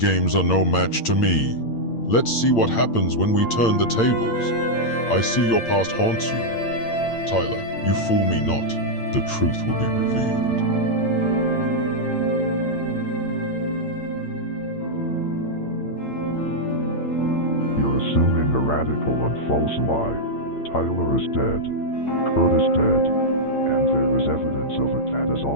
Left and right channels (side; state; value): right; late; 8.8 ms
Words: are no match to me. Let's see what happens when we turn the tables. I see your past haunts you. Tyler, you fool me not. The truth will be revealed. spreading a radical and false lie. Tyler is dead. Kurt is dead. And there is evidence of it that has